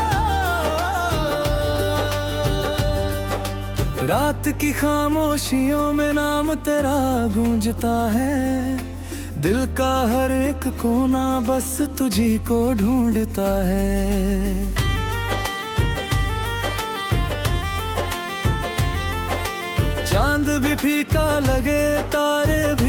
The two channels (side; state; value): both; identical; correlation 1.00